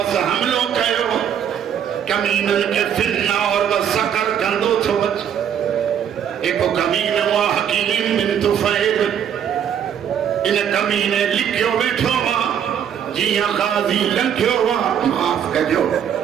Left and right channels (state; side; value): quieter; left; 8.8 dB